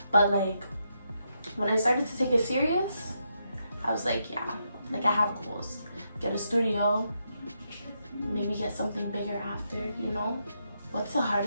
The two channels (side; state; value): both; inverted; correlation -0.81